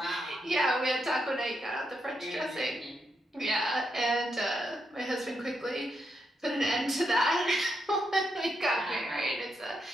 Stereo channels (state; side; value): normal; both; correlation 0.82